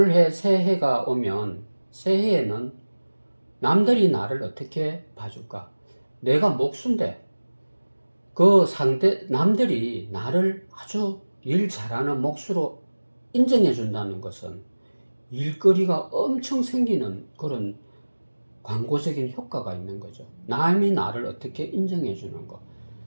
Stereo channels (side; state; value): both; inverted; correlation -1.00